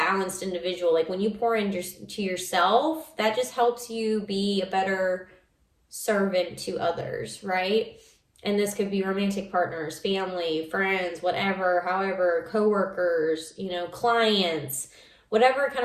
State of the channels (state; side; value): identical; both; correlation 1.00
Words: individual. Like when you pour into yourself, that just helps you be a better servant to others, right? And this could be romantic partners, family, friends, whatever, however, coworkers, you know, clients, whatever kind